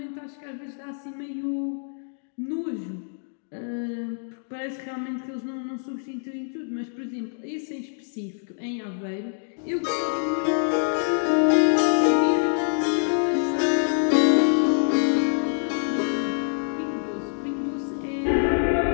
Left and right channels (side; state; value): right; silent; digital silence